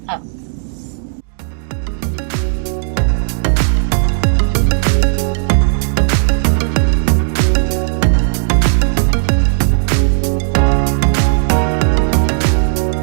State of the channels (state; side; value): silent; left; digital silence